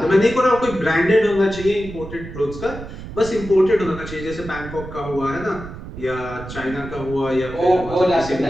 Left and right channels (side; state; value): right; noise; rumble, 12 dB below the sound